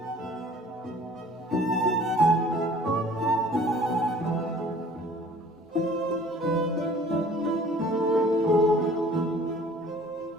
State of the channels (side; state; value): both; normal; correlation 0.51